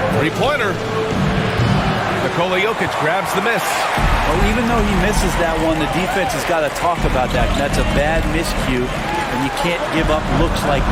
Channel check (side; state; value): both; identical; correlation 1.00